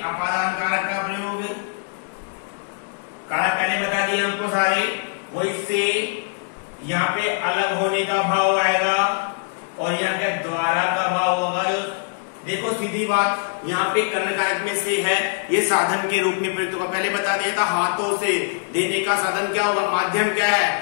कारक का प्रयोग। कारक पहले बता दिए हमको सारे, वो इससे यहाँ पे अलग होने का भाव आएगा और यहाँ पे द्वारा का भाव होगा। देखो सीधी बात, यहाँ पे कर्ण कारक में से है, ये साधन के रूप में प्रयुक्त होगा। पहले बता दिया था हाथों से देने का साधन क्या होगा? माध्यम क्या है?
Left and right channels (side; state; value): right; silent; digital silence